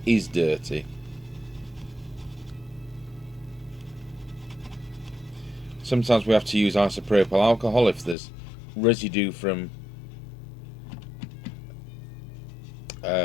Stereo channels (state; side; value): drops out; right; at 8.2 s